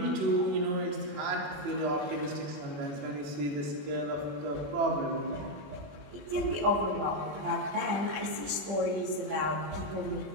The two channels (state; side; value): late; left; 20 ms